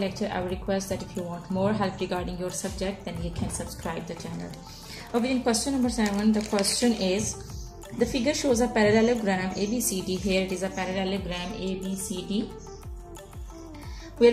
I would request that if you want more help regarding your subject, then you can subscribe the channel. Okay, in question number 7, the question is, the figure shows a parallelogram ABCD. Here it is a parallelogram ABCD, where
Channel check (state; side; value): identical; both; correlation 1.00